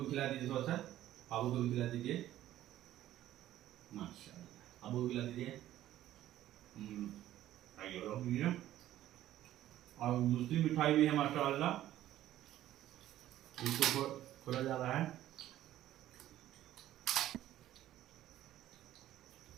खिला दीजिए थोड़ा सा, बाबू को भी खिला दीजिए, माशाअल्लाह। अबू को खिला दीजिए। और दूसरी मिठाई भी है माशाअल्लाह, इसको खोला जा रहा है।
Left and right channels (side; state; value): left; quieter; 13.3 dB